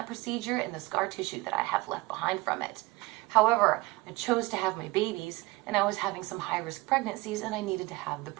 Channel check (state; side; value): quieter; left; 22.5 dB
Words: procedure and the scar tissue that I have left behind from it. However, I chose to have my babies, and I was having some high-risk pregnancies, and I needed to have the